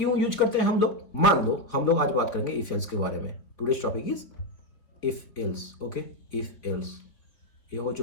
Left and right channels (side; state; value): right; late; 4.1 ms